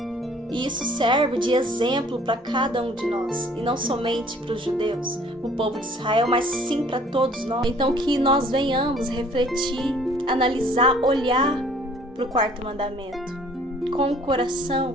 E isso serve de exemplo para cada um de nós, e não somente para os judeus, o povo de Israel, mas sim para todos nós. Então que nós venhamos refletir, analisar, olhar para o quarto mandamento com o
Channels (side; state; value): both; normal; correlation 0.55